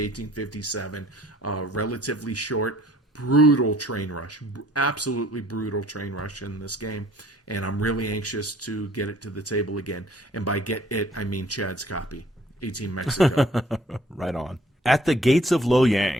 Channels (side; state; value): both; normal; correlation 0.57